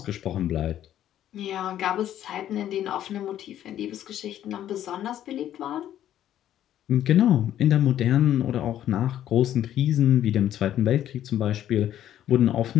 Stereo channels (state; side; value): quieter; right; 11.6 dB